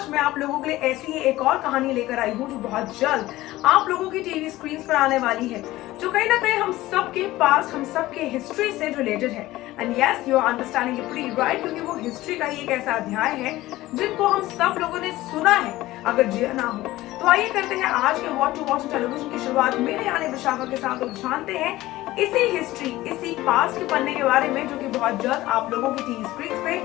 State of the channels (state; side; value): quieter; right; 17.1 dB